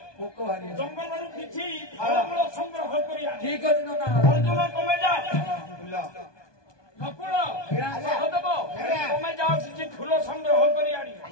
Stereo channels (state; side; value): late; right; 1.2 ms